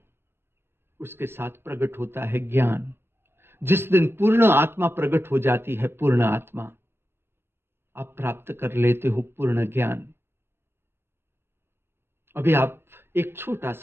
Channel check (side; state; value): left; late; 0.11 ms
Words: उसके साथ प्रकट होता है ज्ञान। जिस दिन पूर्ण आत्मा प्रकट हो जाती है, पूर्ण आत्मा, आप प्राप्त कर लेते हो पूर्ण ज्ञान। अभी आप एक छोटा